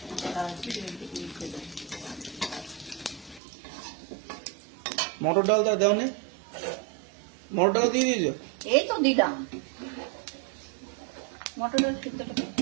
মিশিয়ে দেবো। মটর ডালটা দেও নে, মটর ডাল দিয়ে দিয়েছো? এই তো দিলাম মটরের সিদ্ধটা করতে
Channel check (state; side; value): drops out; left; at 3.4 s